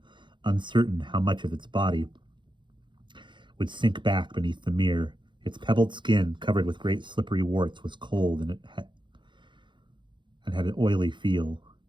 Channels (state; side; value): late; left; 0.23 ms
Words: uncertain how much of its body would sink back beneath the mirror. Its pebbled skin, covered with great slippery warts, was cold and had an oily feel.